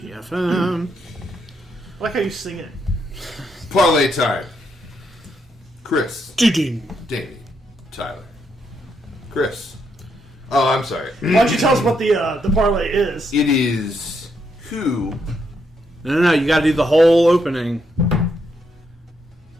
I like how you sing it. Parley time. Chris. Ding. Damian. Tyler. Chris. Oh, I'm sorry. Why don't you tell us what the parlay is? It is who. No, you got to do the whole opening.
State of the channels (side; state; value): both; normal; correlation 0.78